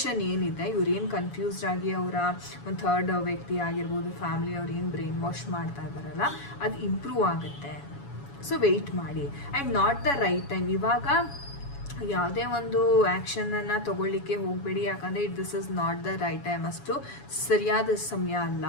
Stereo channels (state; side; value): late; right; 7.1 ms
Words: ಏನಿದೆ, ಇವ್ರು ಏನು ಕನ್ಫ್ಯೂಸ್ಡ್ ಆಗಿ ಅವರ ಒಂದು ಥರ್ಡ್ ವ್ಯಕ್ತಿ ಆಗಿರ್ಬೋದು, ಫ್ಯಾಮಿಲಿ ಅವ್ರು ಏನು ಬ್ರೈನ್ ವಾಶ್ ಮಾಡ್ತಾ ಇದ್ದಾರಲ್ಲ, ಅದು ಇಂಪ್ರೂವ್ ಆಗುತ್ತೆ. ಸೊ ವೆಯ್ಟ್ ಮಾಡಿ. And not the right time. ಇವಾಗ ಯಾವುದೇ ಒಂದು ಆ್ಯಕ್ಷನನ್ನು ತೊಗೊಳ್ಳಿಕ್ಕೆ ಹೋಗಬೇಡಿ, ಯಾಕಂದರೆ this is not the right time. ಅಷ್ಟು ಸರಿಯಾದ ಸಮಯ ಅಲ್ಲ.